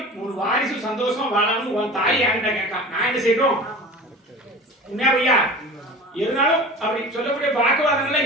ஒரு வாரிசு சந்தோஷமா வாழாமனு உன் தாய் என்கிட்ட கேட்கா நான் என்ன செய்யணும் உண்மையா? இருந்தாலும் அப்படி சொல்லக்கூடிய வாக்குவாதங்கள்லாம்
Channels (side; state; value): both; normal; correlation 0.37